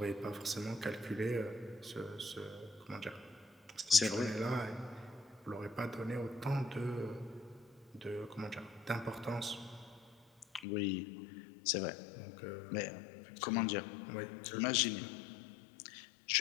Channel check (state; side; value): drops out; right; at 10.7 s